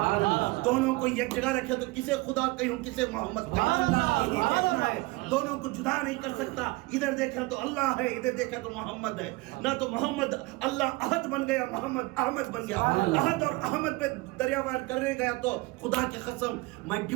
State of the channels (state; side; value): quieter; left; 22.7 dB